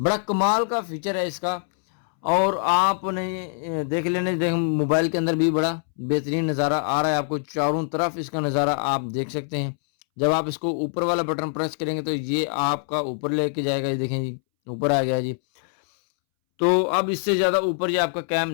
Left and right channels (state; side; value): silent; right; 63 dB below the other